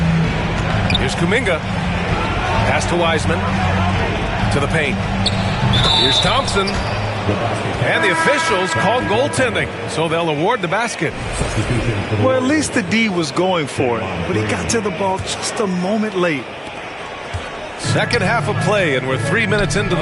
Here's Kuminga. Pass to Wiseman. To the paint. Here's Thompson. And the officials called goaltending, so they'll award the basket. Well, at least the D was going for it, but he got to the ball just a moment late. Second half of play, and we're 3 minutes into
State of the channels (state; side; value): identical; both; correlation 1.00